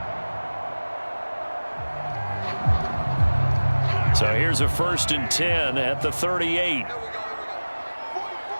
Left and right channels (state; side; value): inverted; both; correlation -1.00